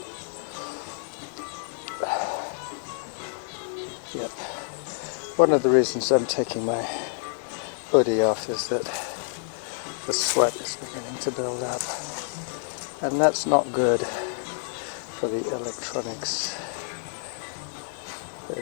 Yep. One of the reasons I'm taking my hoodie off is that the sweat is beginning to build up. And that's not good for the electronics. They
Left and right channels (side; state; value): right; silent; digital silence